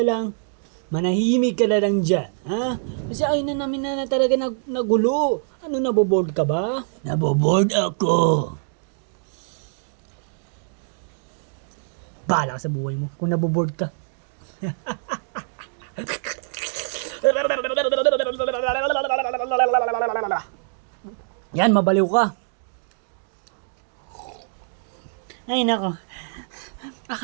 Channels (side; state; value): left; silent; digital silence